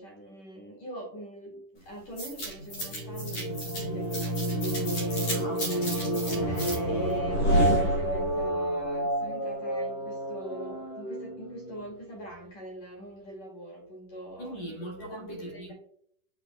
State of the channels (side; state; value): right; late; 10 ms